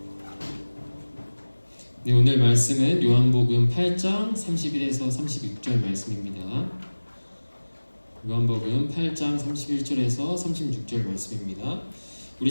네, 오늘 말씀은 요한복음 8장 31에서 36절 말씀입니다. 요한복음 8장 31절에서 36절 말씀입니다.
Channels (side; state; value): both; inverted; correlation -1.00